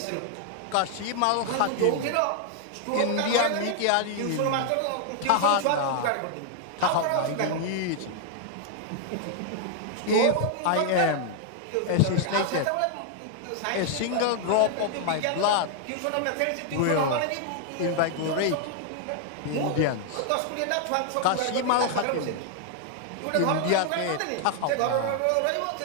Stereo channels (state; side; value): different; both; correlation 0.00